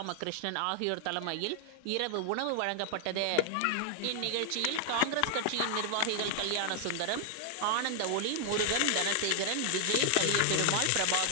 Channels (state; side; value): different; both; correlation 0.00